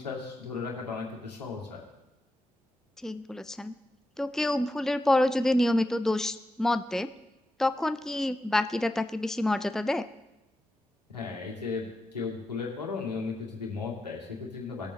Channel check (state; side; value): normal; both; correlation 0.88